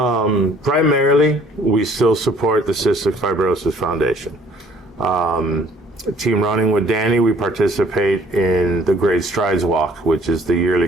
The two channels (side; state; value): both; normal; correlation 0.57